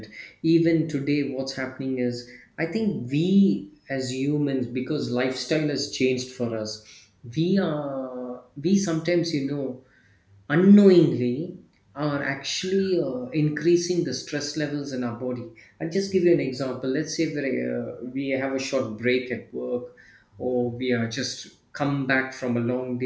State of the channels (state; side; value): identical; both; correlation 1.00